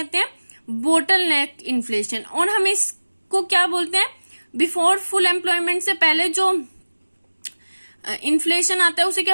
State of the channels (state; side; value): inverted; both; correlation -1.00